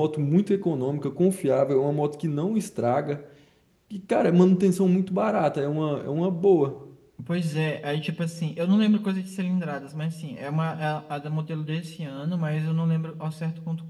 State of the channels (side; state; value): both; identical; correlation 1.00